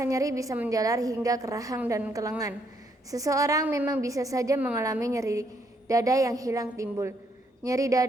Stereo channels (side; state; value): both; normal; correlation 0.72